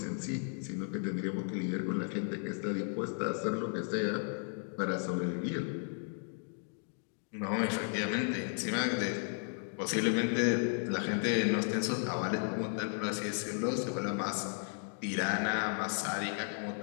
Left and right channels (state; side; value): silent; right; 55 dB below the other